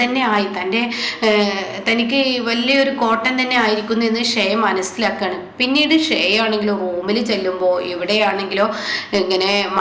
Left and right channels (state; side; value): identical; both; correlation 1.00